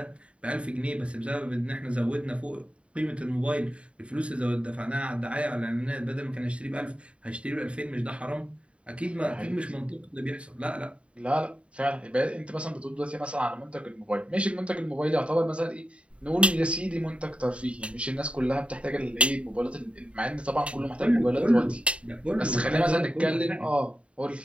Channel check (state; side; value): late; left; 0.061 ms